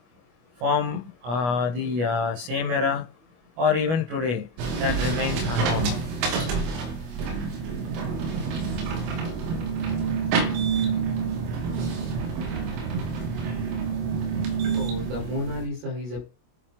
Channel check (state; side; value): late; left; 25 ms